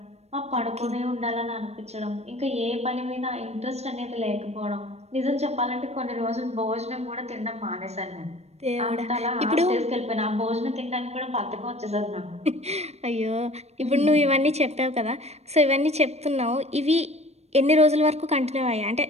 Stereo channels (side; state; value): left; late; 0.31 ms